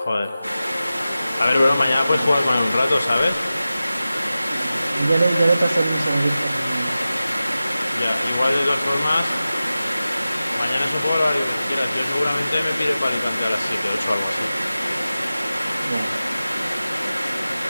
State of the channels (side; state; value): both; inverted; correlation -0.95